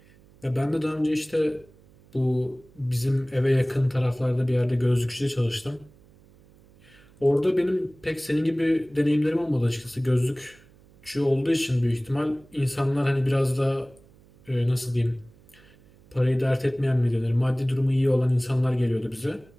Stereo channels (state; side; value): noise; right; hum, 27 dB below the sound